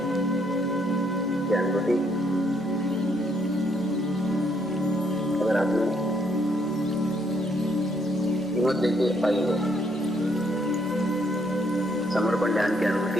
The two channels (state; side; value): normal; both; correlation 0.71